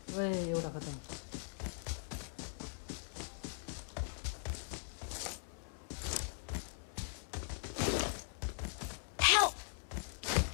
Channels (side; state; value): right; silent; digital silence